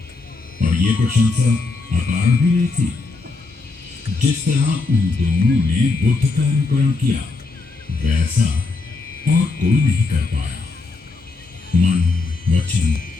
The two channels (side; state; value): right; quieter; 3.7 dB